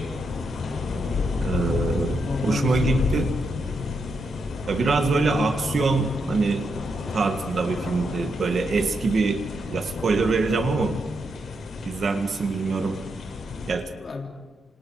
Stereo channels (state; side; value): normal; both; correlation 0.82